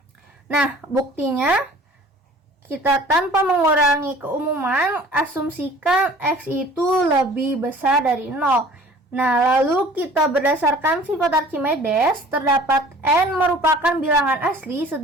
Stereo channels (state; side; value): normal; both; correlation 0.48